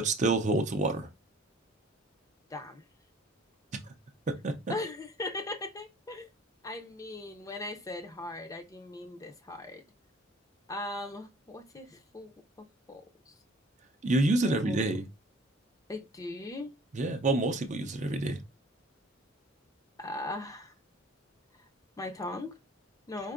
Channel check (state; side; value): normal; both; correlation 0.51